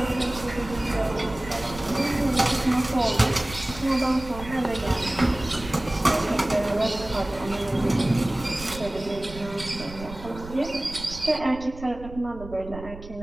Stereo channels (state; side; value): noise; right; rumble, 14 dB below the sound